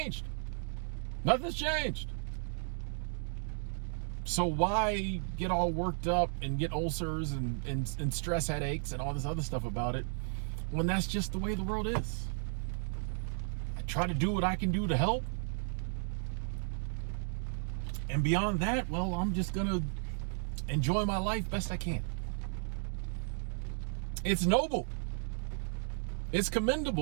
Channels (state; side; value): silent; left; digital silence